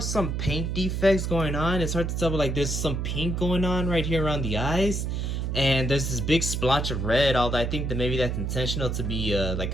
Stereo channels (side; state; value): right; noise; hum, 1 dB below the sound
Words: paint defects going on. It's hard to tell, but like there's some pink going on right here around the eyes. And there's this big splotch of red, although I think that maybe that's intentional to be like